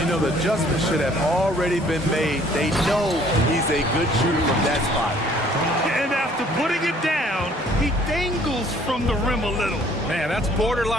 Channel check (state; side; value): normal; both; correlation 0.58